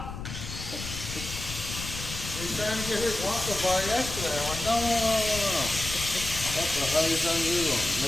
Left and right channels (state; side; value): noise; left; rumble, 8 dB below the sound